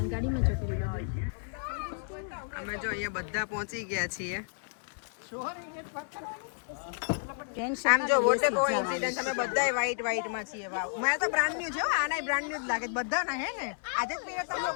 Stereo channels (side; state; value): right; silent; digital silence